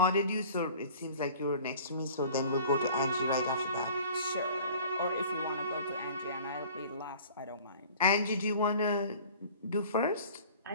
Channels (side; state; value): both; inverted; correlation -0.46